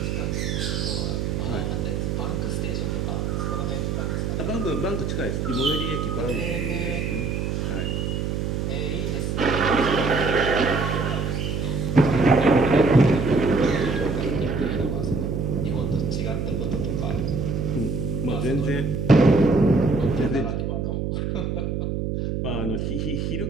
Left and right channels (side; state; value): right; noise; hum, 1 dB below the sound